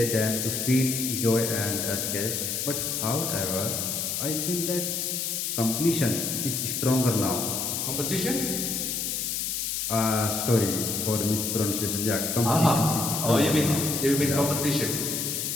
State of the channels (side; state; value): left; noise; hiss, 1 dB below the sound